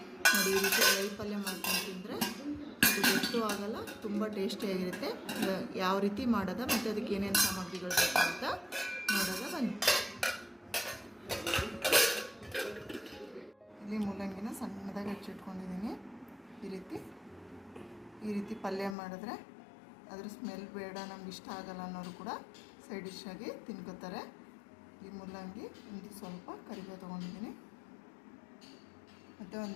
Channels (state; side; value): drops out; right; at 18.9 s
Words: ನೋಡಿ, ಈ ರೀತಿ ಡ್ರೈ ಪಲ್ಯ ಮಾಡ್ಕೊಂಡು ತಿಂದರೆ ಅದು ಗೊತ್ತೂ ಆಗಲ್ಲ, ತುಂಬ ಟೇಸ್ಟಿಯಾಗಿರುತ್ತೆ. ಯಾವ ರೀತಿ ಮಾಡೋದ ಮತ್ತು ಅದಕ್ಕೆ ಏನೇನು ಸಾಮಗ್ರಿಗಳು ಬೇಕು ಅಂತ ನೋಡೋದ ಬನ್ನಿ. ಇಲ್ಲಿ ಮೂಲಂಗಿನ ಸಣ್ಣದಾಗಿ ಹೆಚ್ಚಿಟ್ಕೊಂಡಿದ್ದೀನಿ. ಈ ರೀತಿ ಪಲ್ಯ ಮಾಡಿದ್ರೆ ಅದ್ರ ಸ್ಮೆಲ್ ಬೇಡ, ನಮ್ಗೆ ಇಷ್ಟ ಆಗಲ್ಲ ಅನ್ನೋರು ಕೂಡ ಸೈಡ್ ಡಿಶ್ ಆಗಿ ತಿನ್ಕೋತಾರೆ. ಈ ಮೂಲಂಗಿ ಒಂದು ಸ್ವಲ್ಪ ಕರಿಬೇವು ತೊಗೊಂಡಿದ್ದೀನಿ, ಮತ್ತು